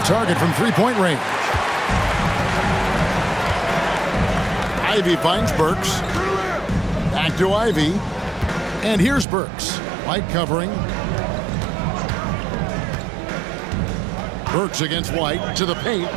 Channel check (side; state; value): left; drops out; at 9.2 s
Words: target from 3-point range. Ivy finds Burks. Back to Ivy. And here's Burks. White covering. Burks against White to the paint.